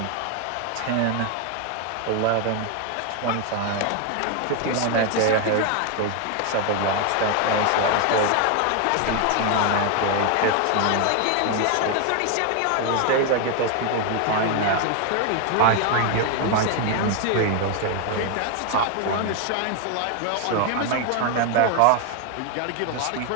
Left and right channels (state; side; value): different; both; correlation 0.01